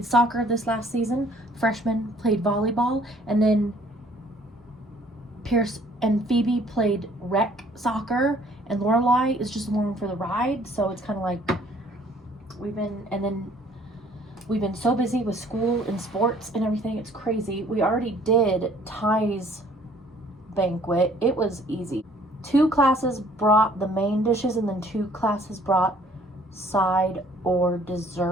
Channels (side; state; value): both; normal; correlation 0.58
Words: soccer this last season. Freshman played volleyball. And then Pierce and Phoebe played rec soccer. And Lorelai is just along for the ride. So it's kind of like we've been so busy with school and sports and everything. It's crazy. We already did Ty's banquet. It was easy. 2 classes brought the main dishes and then 2 classes brought side or